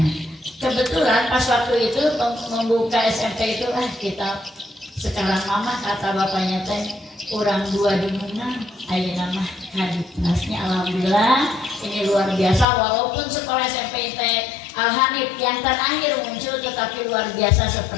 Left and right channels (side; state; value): right; drops out; at 12.7 s